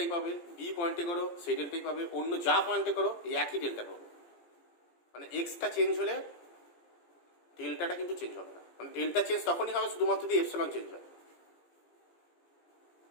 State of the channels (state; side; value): late; right; 17 ms